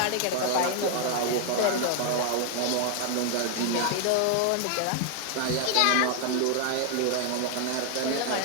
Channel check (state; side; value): different; both; correlation 0.00